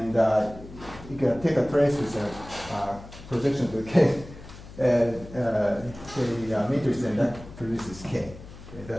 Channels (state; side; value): noise; left; hum, 16 dB below the sound